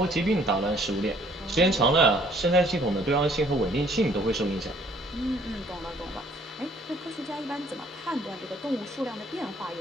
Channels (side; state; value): both; normal; correlation 0.61